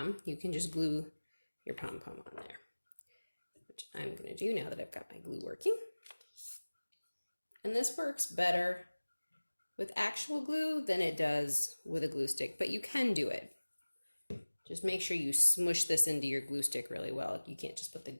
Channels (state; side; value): inverted; both; correlation -1.00